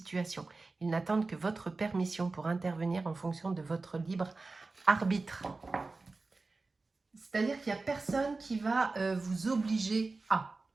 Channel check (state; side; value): quieter; left; 3.6 dB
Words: Ils n'attendent que votre permission pour intervenir en fonction de votre libre arbitre. C'est-à-dire qu'il n'y a personne qui va vous obliger à.